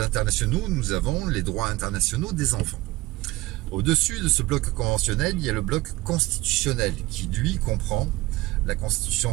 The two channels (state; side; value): quieter; left; 19.6 dB